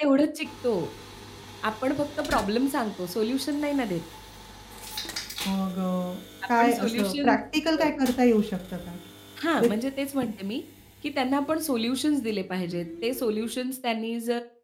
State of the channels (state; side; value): identical; both; correlation 1.00